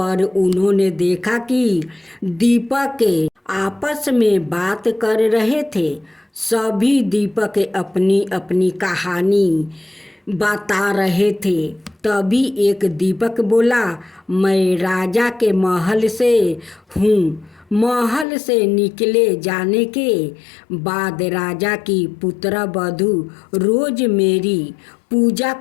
उन्होंने देखा कि दीपक आपस में बात कर रहे थे। सभी दीपक अपनी अपनी कहानी बता रहे थे। तभी एक दीपक बोला, मैं राजा के महल से हूँ। महल से निकले जाने के बाद राजा की पुत्रवधू रोज मेरी पूजा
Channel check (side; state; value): right; drops out; at 18.2 s